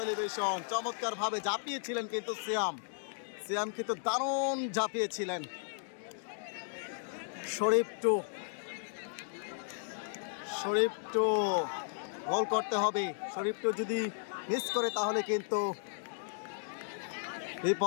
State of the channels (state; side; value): silent; right; digital silence